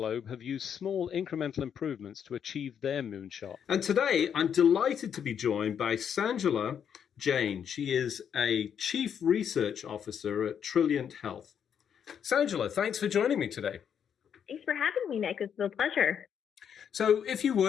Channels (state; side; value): quieter; right; 8.1 dB